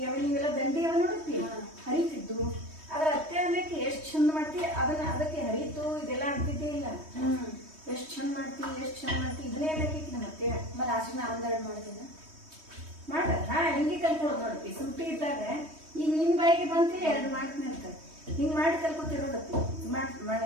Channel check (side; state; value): left; late; 3.2 ms